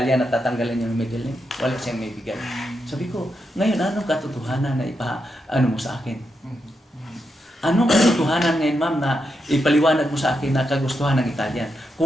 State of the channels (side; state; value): both; normal; correlation 0.85